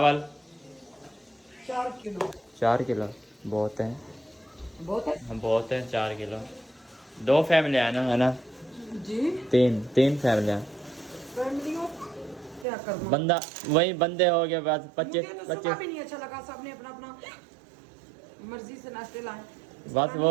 4 किलो बहुत है। बहुत है 4 किलो। 2 फैमिली है ना जी। तीन फैमिलियाँ। फैमिलियों क्या करना, बंदा वही बंदे हो गए बस 25 मुझे तो सुबह 25 भी नहीं अच्छा लगा, सबने अपना अपना मर्जी से नाश्ते लाए। बस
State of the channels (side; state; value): left; drops out; at 12.7 s